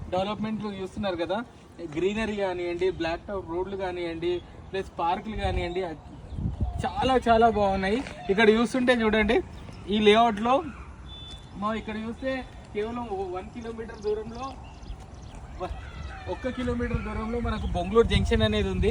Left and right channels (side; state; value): both; identical; correlation 1.00